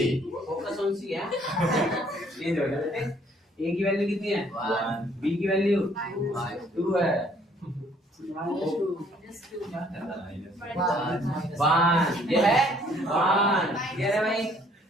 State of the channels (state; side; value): normal; both; correlation 0.62